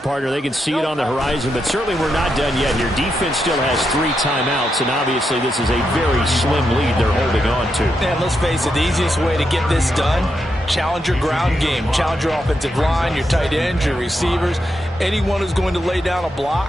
They can see it on the horizon, but certainly we're not done yet here. Defense still has 3 timeouts, and obviously this is a very slim lead they're holding on to. And let's face it, the easiest way to get this done, challenge your ground game. Challenge your offensive line, your tight ends, your receivers, anyone who's going to lay down a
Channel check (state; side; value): normal; both; correlation 0.83